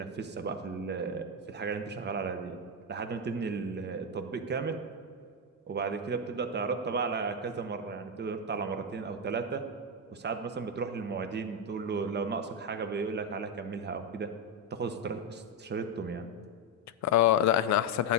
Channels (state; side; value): normal; both; correlation 0.06